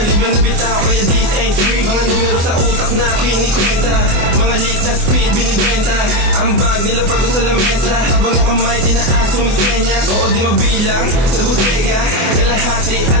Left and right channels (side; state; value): left; late; 24 ms